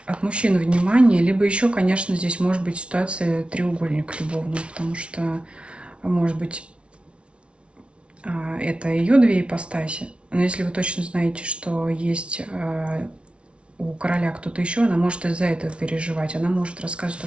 от мужчины внимания, либо еще, конечно, здесь может быть ситуация треугольник любовный, потому что, может быть, это ее две ипостаси. Но если вы точно знаете, что есть у короля кто-то еще, она может из-за этого переживать. Она может рассказывать то,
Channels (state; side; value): late; left; 0.059 ms